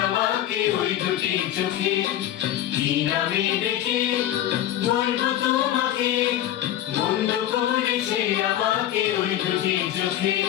আমাকে ওই দুটি চোখে। কি নামে ডেকে বলবো তোমাকে মন্দ করেছে আমাকে ওই দুটি চোখে।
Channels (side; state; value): right; quieter; 12.2 dB